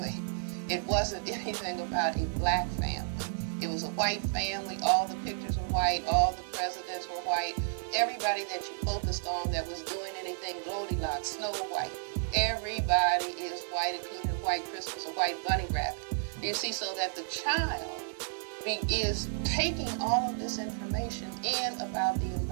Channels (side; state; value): left; silent; 56 dB below the other